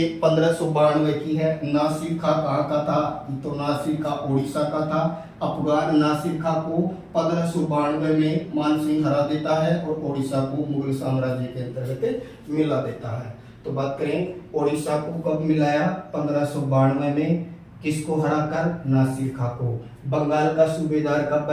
1592 की है। नासिर खां कहाँ का था? तो नासिर खां उड़ीसा का था। अफगान नासिर खां को 1592 में मानसिंह हरा देता है और उड़ीसा को मुगल साम्राज्य के अंतर्गत मिला देता है। तो बात करें उड़ीसा को कब मिलाया? 1592 में। किसको हराकर? नासिर खां को। बंगाल का सूबेदार कब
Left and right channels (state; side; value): identical; both; correlation 1.00